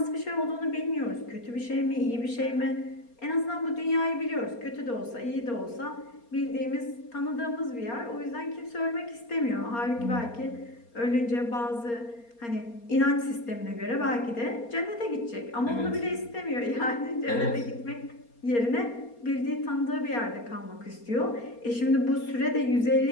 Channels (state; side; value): late; right; 4.3 ms